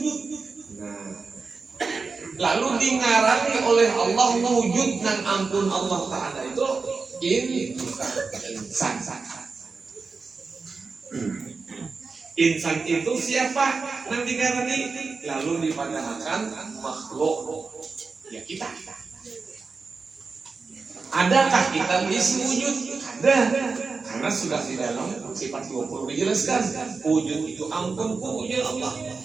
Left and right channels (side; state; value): left; quieter; 4.5 dB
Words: Nah, lalu dingarani oleh Allah wujud dan ampun Allah Ta'ala itu ini insan. Insan itu siapa? Nanti ngarani lalu dipadahkan makhluk ya kita. Adakah kita mengisi wujud? Ada. Karena sudah di dalam sifat 20 dijelaskan. Wujud itu ampun wujud Allah.